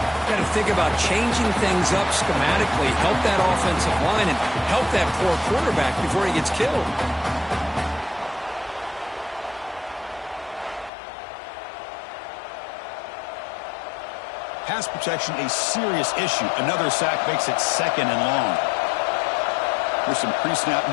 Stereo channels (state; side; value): drops out; right; at 10.9 s